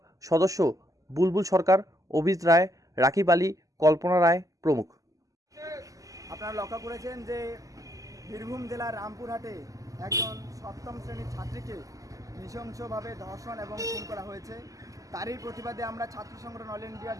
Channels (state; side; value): late; left; 0.17 ms